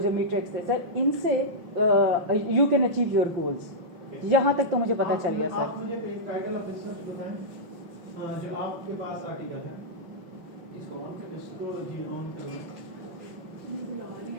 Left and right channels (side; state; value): left; late; 5.9 ms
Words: मीट्रिक्स थे सर, इनसे you can achieve your goals. यहाँ तक तो मुझे पता चल गया सर। आप मुझे टाइटल ऑफ रिसर्च बताएं जो आपके पास आर्टिकल है, इसको जी ऑन करना